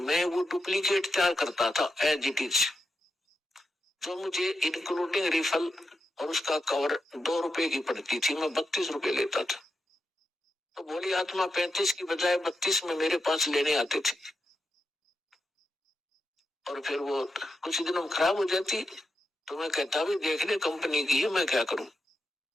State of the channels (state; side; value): normal; both; correlation 0.86